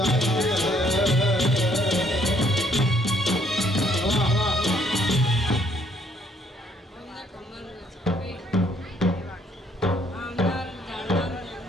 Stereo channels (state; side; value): normal; both; correlation 0.66